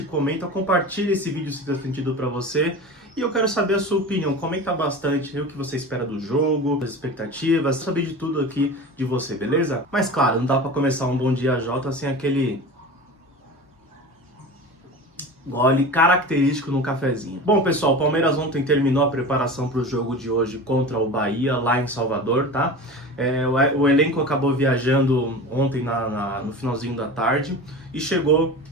comenta, compartilhe esse vídeo se fez sentido para você. E eu quero saber a sua opinião, comenta bastante o que você espera do jogo, as expectativas, saber de tudo aqui de você, beleza? Mas claro, não dá para começar um Bom Dia Jota sem aquele gole característico no cafezinho. Bom, pessoal, o Palmeiras ontem terminou a preparação para o jogo de hoje contra o Bahia, lá em Salvador, tá? O elenco acabou viajando ontem no finalzinho da tarde e chegou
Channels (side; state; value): both; normal; correlation 0.32